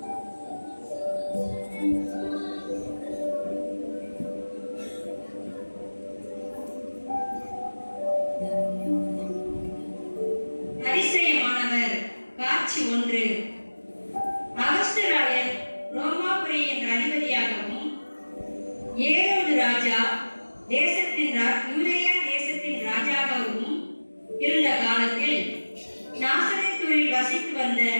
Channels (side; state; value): both; inverted; correlation -1.00